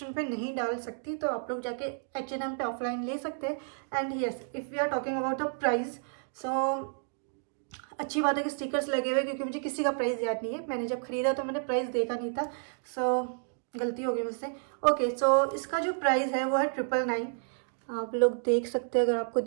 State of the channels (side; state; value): left; silent; digital silence